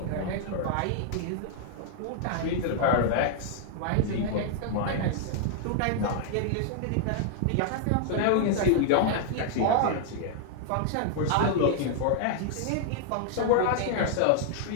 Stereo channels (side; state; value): both; different; correlation 0.00